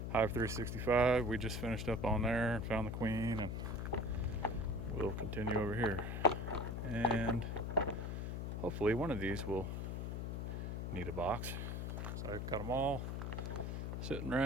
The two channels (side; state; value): left; noise; hum, 3 dB below the sound